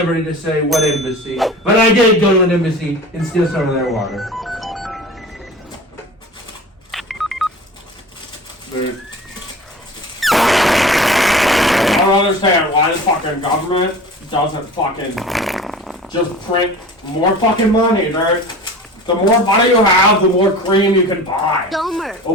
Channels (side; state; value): both; normal; correlation 0.38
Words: to say what embassy, but I did go to an embassy and steal some of their water. I don't understand why the fucking government doesn't fucking just print more fucking money, dude. The more money you have, the more cream you can buy. The